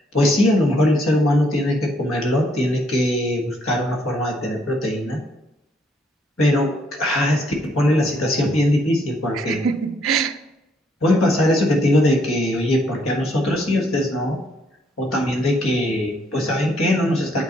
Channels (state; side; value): normal; both; correlation 0.70